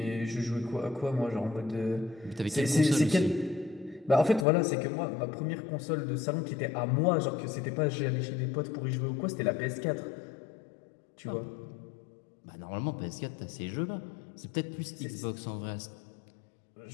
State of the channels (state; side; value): drops out; right; at 4.5 s